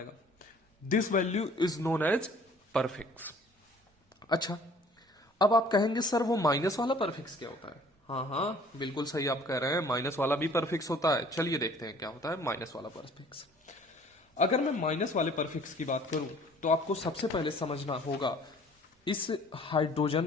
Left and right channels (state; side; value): normal; both; correlation 0.53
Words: This value is known as prefix. अच्छा, अब आप कहेंगे सर वो माइनस वाला परफिक्स क्या होता है? हाँ, बिल्कुल सही आप कह रहे हैं, माइनस वाला भी परफिक्स होता है. चलिए देखते हैं क्या होता है माइनस वाला परफिक्स. अगर मैं माइनस वाले परफिक्स की बात करूं तो आपको सबसे पहले समझना होगा इस